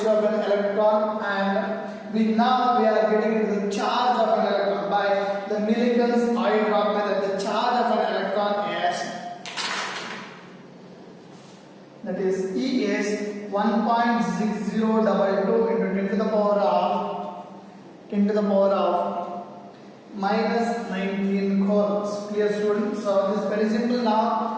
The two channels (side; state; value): both; identical; correlation 1.00